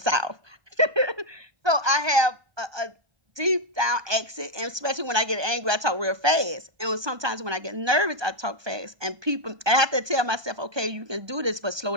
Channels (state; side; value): late; left; 1.2 ms